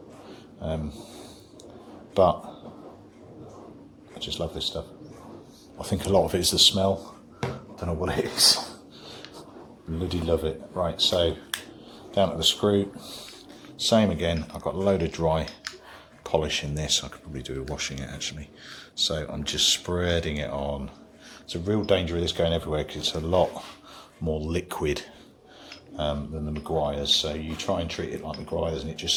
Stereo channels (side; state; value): both; identical; correlation 1.00